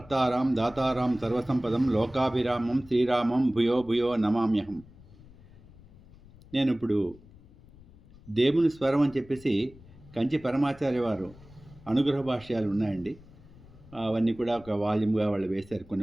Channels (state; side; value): noise; left; rumble, 22 dB below the sound